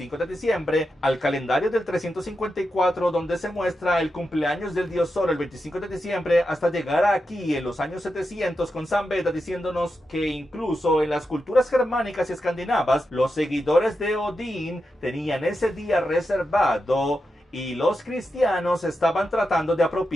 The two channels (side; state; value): both; normal; correlation 0.88